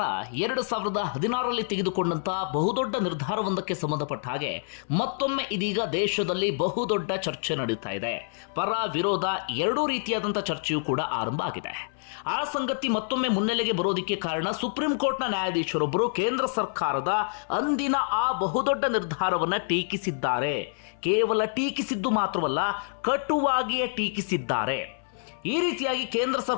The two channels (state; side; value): silent; right; 57 dB below the other